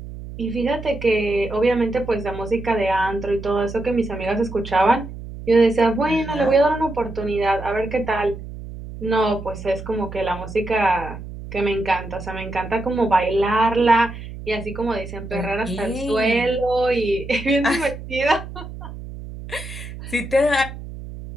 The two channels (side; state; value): right; noise; hum, 11 dB below the sound